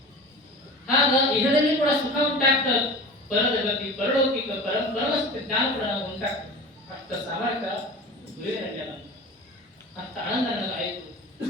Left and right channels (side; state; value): both; normal; correlation 0.35